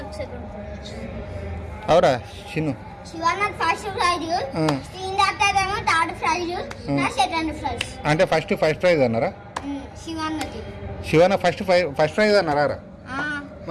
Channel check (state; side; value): identical; both; correlation 1.00